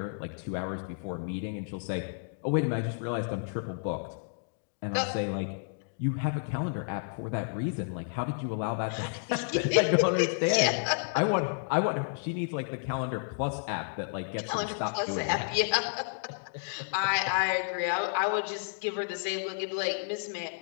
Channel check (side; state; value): right; silent; digital silence